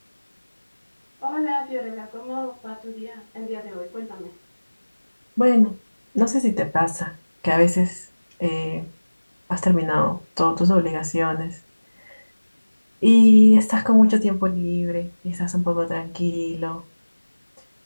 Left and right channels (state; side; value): inverted; both; correlation -1.00